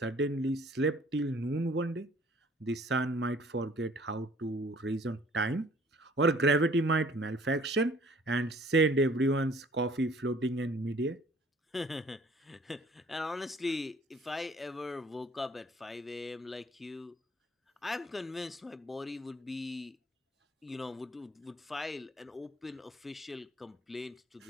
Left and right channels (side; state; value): both; normal; correlation 0.55